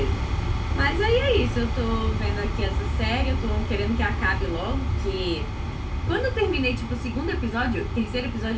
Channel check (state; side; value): identical; both; correlation 1.00